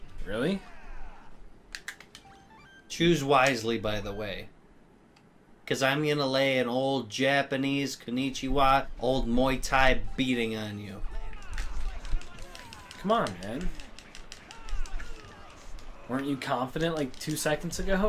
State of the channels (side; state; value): both; identical; correlation 1.00